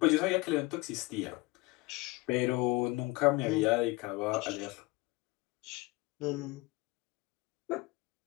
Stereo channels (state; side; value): quieter; right; 23.0 dB